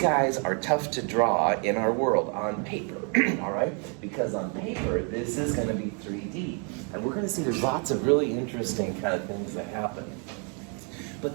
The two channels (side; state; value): left; quieter; 38.1 dB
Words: are tough to draw in our world on paper, all right? Because on paper, this is going to be 3D. And we're going to see there's lots of really interesting kind of things that happen.